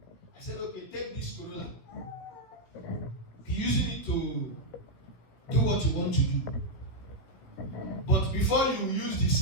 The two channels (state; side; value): late; right; 16 ms